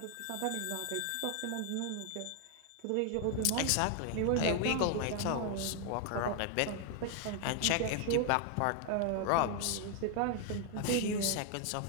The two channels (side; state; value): both; different; correlation 0.00